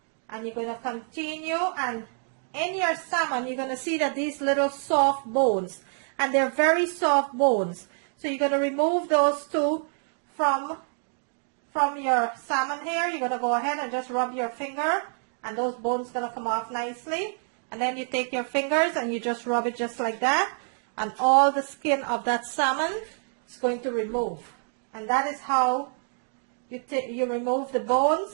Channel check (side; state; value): left; silent; 60 dB below the other